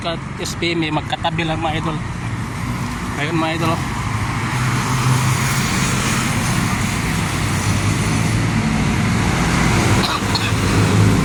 at SBM magkatabi lang mga idol. Ayan mga idol.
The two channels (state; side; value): identical; both; correlation 1.00